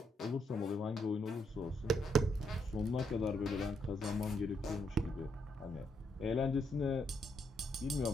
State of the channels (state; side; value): normal; both; correlation 0.76